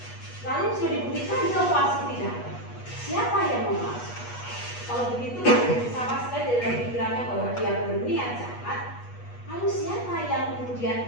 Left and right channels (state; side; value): late; right; 8.3 ms